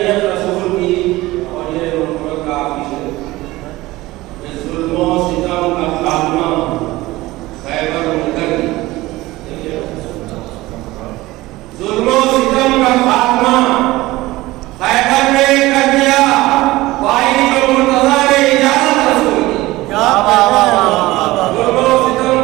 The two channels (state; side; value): quieter; left; 18.8 dB